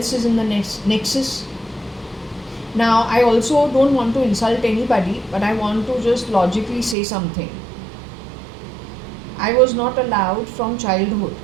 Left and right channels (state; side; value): drops out; left; at 7.0 s